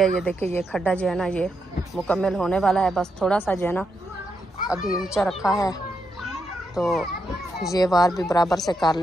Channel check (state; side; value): normal; both; correlation 0.82